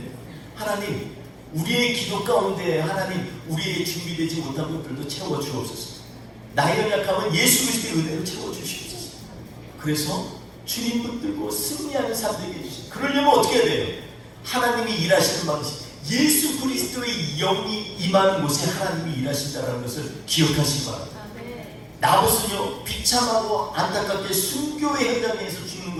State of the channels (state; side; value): identical; both; correlation 1.00